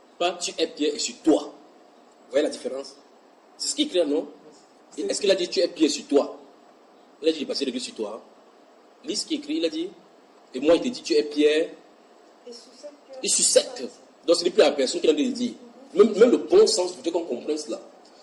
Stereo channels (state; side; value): identical; both; correlation 1.00